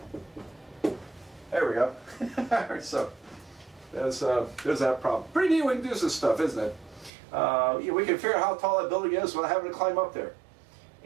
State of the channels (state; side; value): drops out; left; at 7.1 s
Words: There we go. So there's that problem. Pretty neat we can do this stuff, isn't it? We can figure out how tall that building is without having to climb up there.